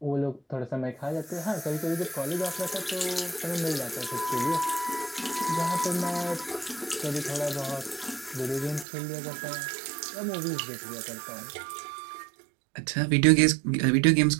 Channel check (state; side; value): drops out; left; at 8.8 s